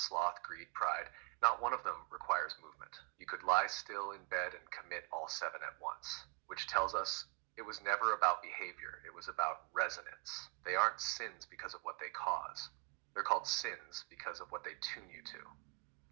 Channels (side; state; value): left; quieter; 32.2 dB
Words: greed, pride. Not one of them requires movement. You could lie still in bed and commit all seven at once, which tells us it was never about behavior. It was about resonance. They aren't sins because of what they cause. They're called sins because of what they tune you to.